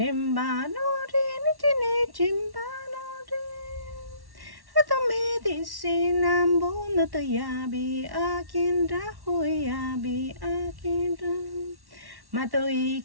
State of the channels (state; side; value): late; left; 1.1 ms